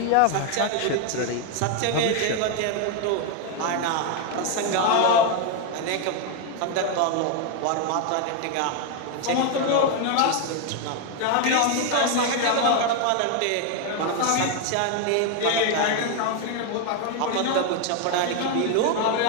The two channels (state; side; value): different; both; correlation 0.01